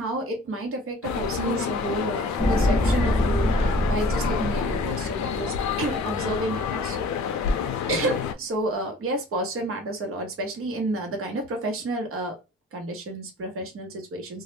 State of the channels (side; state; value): both; normal; correlation 0.46